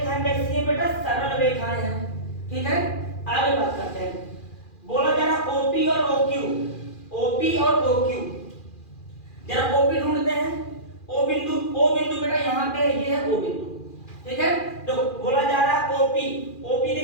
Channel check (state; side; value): late; right; 2.4 ms